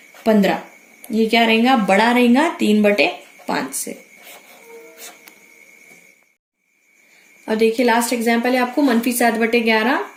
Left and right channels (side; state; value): both; identical; correlation 1.00